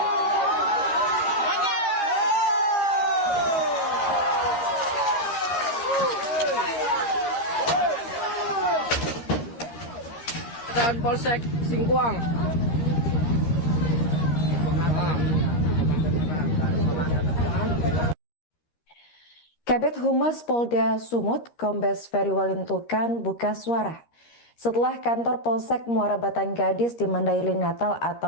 Dan Polsek Singkuang. Kabid Humas Polda Sumut, Kombes Ferry Walintukan buka suara setelah kantor Polsek Muara Batang Gadis di Mandailing Natal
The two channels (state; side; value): late; right; 13 ms